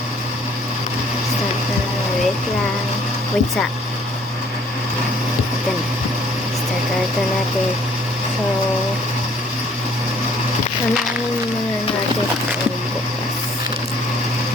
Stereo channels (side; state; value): both; normal; correlation 0.60